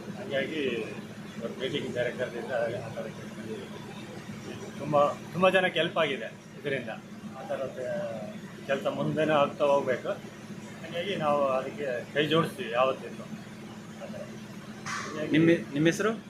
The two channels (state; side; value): identical; both; correlation 1.00